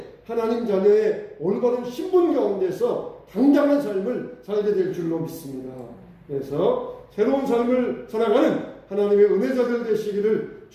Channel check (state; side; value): identical; both; correlation 1.00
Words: 하나님 자녀의 올바른 신분 가운데서 당당한 삶을 살게 될 줄로 믿습니다. 그래서 새로운 삶을 살아가는 하나님의 은혜자들 되시기를